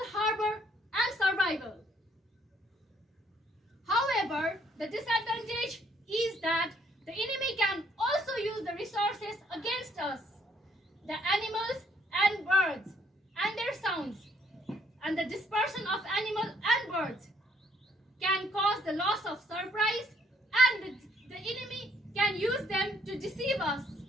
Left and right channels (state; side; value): normal; both; correlation 0.67